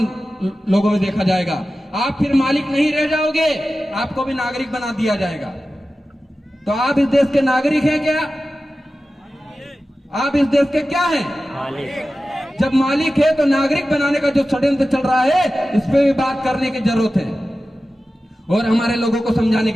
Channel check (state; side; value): normal; both; correlation 0.94